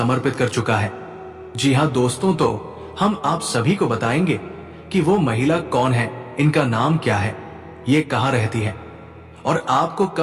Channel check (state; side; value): identical; both; correlation 1.00